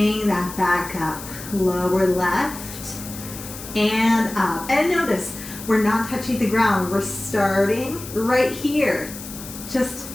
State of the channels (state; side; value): noise; left; hiss, 12 dB below the sound